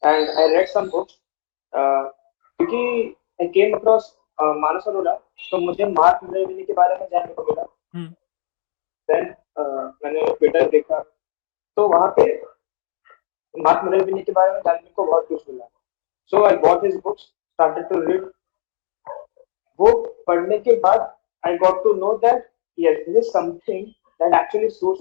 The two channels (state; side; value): silent; right; 66 dB below the other